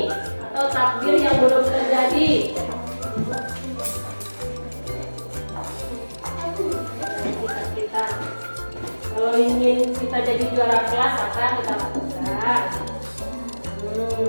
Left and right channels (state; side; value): inverted; both; correlation -1.00